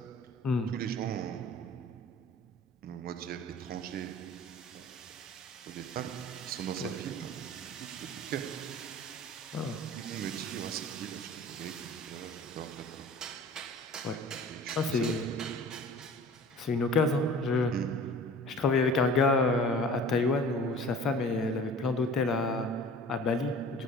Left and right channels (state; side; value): normal; both; correlation 0.43